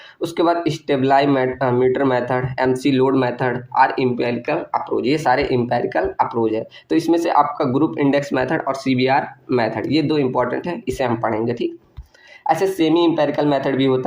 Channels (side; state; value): both; identical; correlation 1.00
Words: उसके बाद stabilometer method, McLeod method और इम्पेरिकल अप्रोच, ये सारे इम्पेरिकल अप्रोच है। तो इसमें से आपका ग्रुप इंडेक्स मेथड और सीबीआर मेथड, ये दो इंपॉर्टेंट है, इसे हम पढ़ेंगे। ठीक, ऐसे सेमी इंपेरिकल मेथड भी